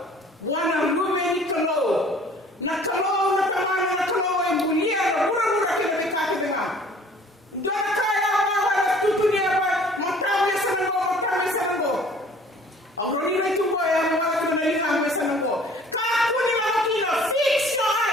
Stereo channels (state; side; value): normal; both; correlation 0.52